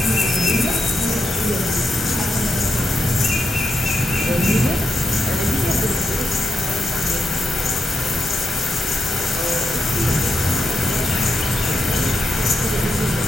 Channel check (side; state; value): both; normal; correlation 0.84